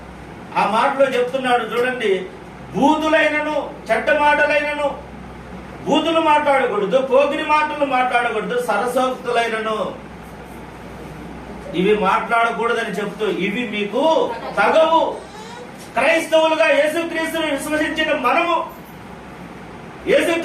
ఆ మాటలో చెప్తున్నాడు చూడండి, బూతులైనను చెడ్డ మాటలైనను, బూతులు మాట్లాడకూడదు, పోకిరి మాటలు మాట్లాడకూడదు, సరసోక్తులైనను ఇవి మాట్లాడకూడదని చెప్తూ ఇవి మీకు తగవు. క్రైస్తవులుగా యేసుక్రీస్తును విశ్వసించిన మనము,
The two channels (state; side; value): identical; both; correlation 1.00